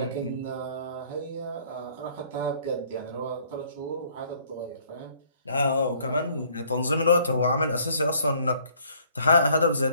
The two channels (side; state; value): both; inverted; correlation -0.61